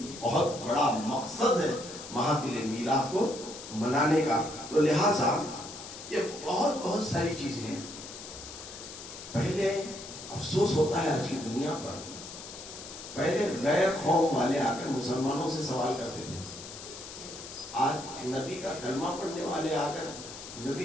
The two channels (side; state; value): left; noise; hiss, 12 dB below the sound